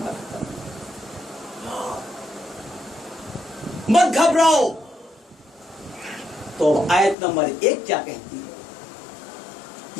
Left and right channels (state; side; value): drops out; right; at 7.2 s